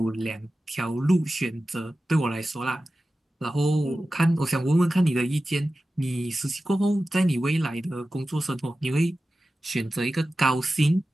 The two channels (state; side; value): normal; both; correlation 0.94